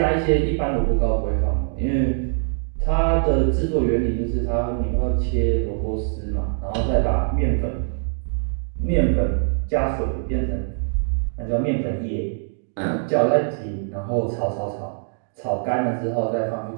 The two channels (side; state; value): left; silent; digital silence